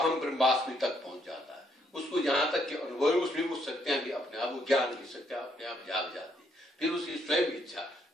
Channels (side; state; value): both; normal; correlation 0.72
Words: ब्रह्मास्मि तक पहुंच जाता है। उसको जहां तक के अनुभव, उसमें वो शक्तियां भी अपने आप, वो ज्ञान की शक्तियां अपने आप जाग जाती है। फिर उसकी स्वयं इच्छा,